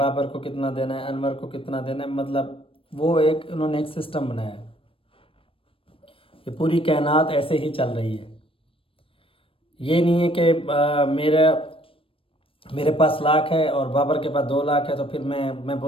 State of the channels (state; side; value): late; right; 0.26 ms